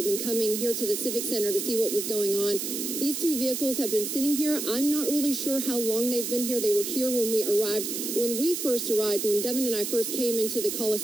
been coming here to the Civic Center to see what was going on. These two vehicles have been sitting here. I'm not really sure how long they've been here. They were here when we arrived. When we first arrived, when Devin and I first came into the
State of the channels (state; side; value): noise; right; hiss, 4 dB below the sound